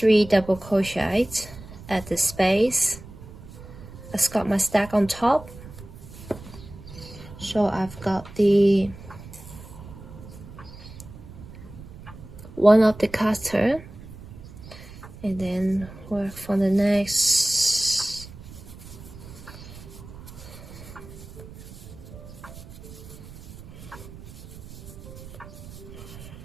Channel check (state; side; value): noise; right; rumble, 15 dB below the sound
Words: double crochets at the space. I've got my stack on top. So I've got the one of the cutter, and then work for the next.